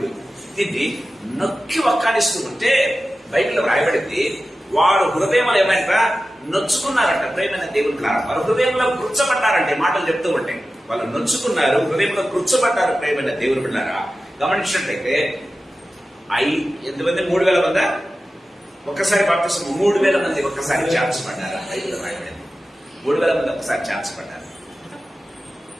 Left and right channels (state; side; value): normal; both; correlation 0.94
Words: దీన్ని నొక్కి వక్కాడిస్తూ ఉంటే బైబిల్లో రాయబడింది, వారు హృదయంలో ఏమైనా నొచ్చుకున్నారంట. ప్రేమైన దేవుని ద్వారా వారు హృదయంలో కృచ్చబడ్డారంటే మాటలు చెప్తూ ఉంటే వాళ్ళు నొచ్చుకున్నారు, హృదయంలో కృచ్చబడ్డారు. ప్రేమైన దేవుని బిడ్డారా గమనించినట్లయితే ఎంతమంది 3,000 మంది ఒక్కసారి బాప్తిసం, 3,000 మంది ఒక్కసారి ఛాన్స్ పడ్డారు. 3,000 మంది ఒక్కసారి ఛాన్స్ పడ్డారు.